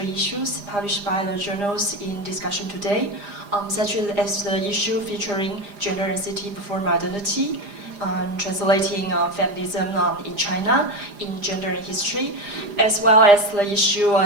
issues published by the journals in discussion today, such as the issue featuring gender and city before modernity, translating feminism in China in gender and history, as well as the issue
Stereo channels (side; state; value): left; late; 4.9 ms